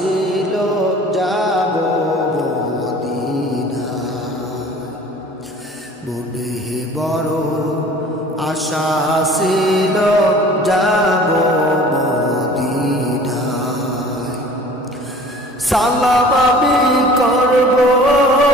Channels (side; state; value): both; normal; correlation 0.46